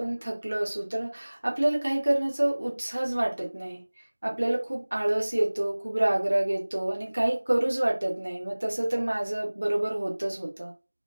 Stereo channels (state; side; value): inverted; both; correlation -1.00